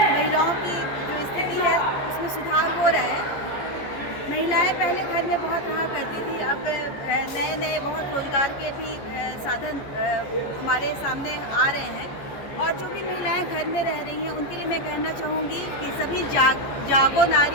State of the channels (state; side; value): late; right; 14 ms